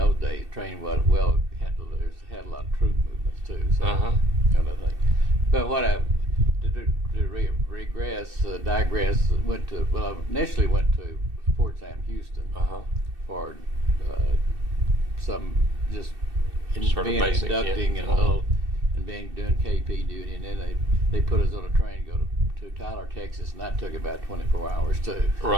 days train had a lot of troop movements too. So kind of thing. But what I digress. I initially went to Fort Sam Houston for some just being basic, inducting and doing KP duty, and then they put us on a train to go to Tyler, Texas, and that took about 24 hours too.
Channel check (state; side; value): late; left; 2.7 ms